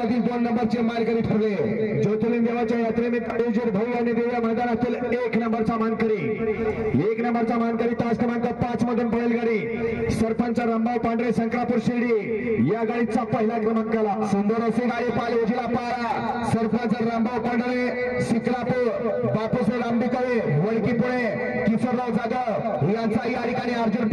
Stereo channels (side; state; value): both; identical; correlation 1.00